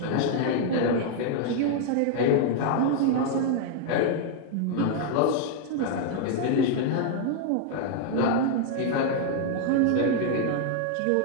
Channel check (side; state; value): both; different; correlation 0.00